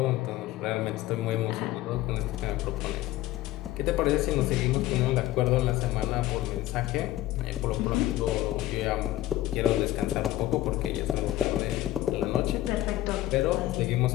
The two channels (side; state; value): right; quieter; 15.3 dB